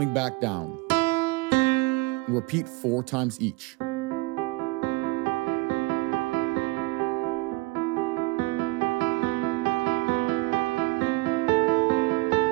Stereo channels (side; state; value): left; quieter; 24.0 dB